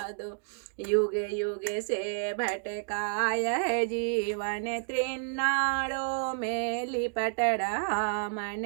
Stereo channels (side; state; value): left; silent; digital silence